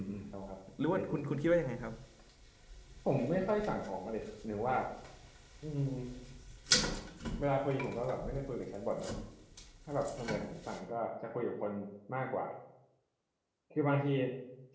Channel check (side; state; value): both; identical; correlation 1.00